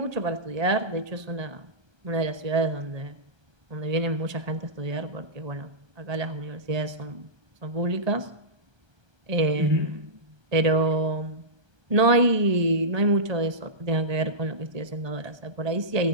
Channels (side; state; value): left; late; 1.2 ms